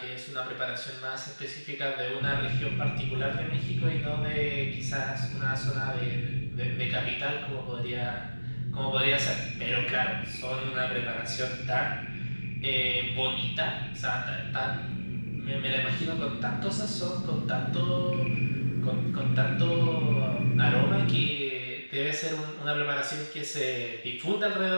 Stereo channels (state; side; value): inverted; both; correlation -1.00